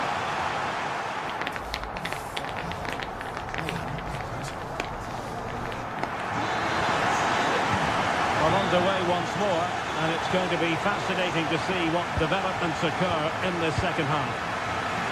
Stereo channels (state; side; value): identical; both; correlation 1.00